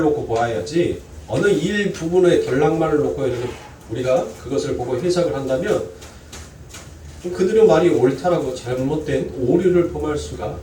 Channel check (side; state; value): both; identical; correlation 1.00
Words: 놓고 보아야지 어느 일부분의 덜락만을 놓고 이렇게 우리가 그것을 보고 해석을 한다면 그들의 말이 옳다라고 잘못된 오류를 범할 수가